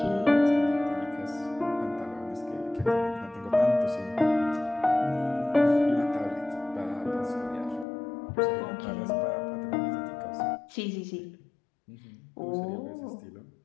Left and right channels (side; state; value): right; drops out; at 7.9 s